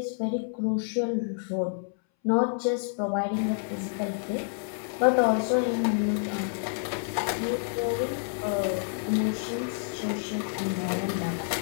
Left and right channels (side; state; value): right; silent; 59 dB below the other